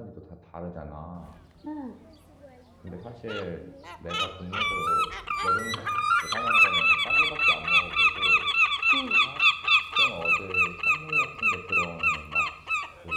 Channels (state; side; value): identical; both; correlation 1.00